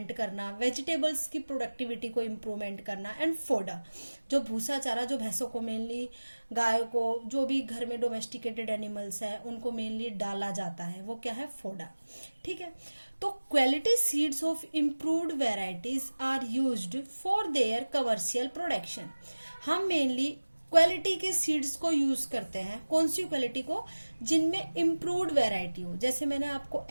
करना, वेजिटेबल्स की प्रोडक्टिविटी को इम्प्रूवमेंट करना, एंड फोडर जो भूसा चारा, जो भैंसों को मेनली, गायों को, जो भी घर में डोमेस्टिकेटेड एनिमल्स है उनको मेनली डाला जाता है, वो क्या है? फोडर। ठीक है, तो quality seeds of improved varieties are used for their commercial production. हम मेनली क्वालिटी के सीड्स को यूज करते हैं। कौन सी क्वालिटी को? जिनमें इम्प्रूव्ड वैरायटी हो। जैसे मैंने आपको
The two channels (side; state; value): both; inverted; correlation -1.00